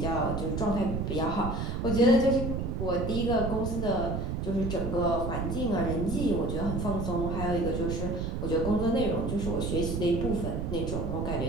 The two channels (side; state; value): right; noise; rumble, 2 dB below the sound